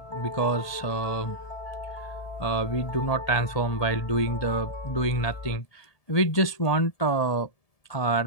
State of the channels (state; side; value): late; right; 1.8 ms